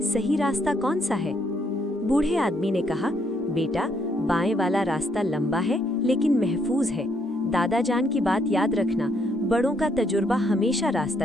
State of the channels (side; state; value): both; normal; correlation 0.72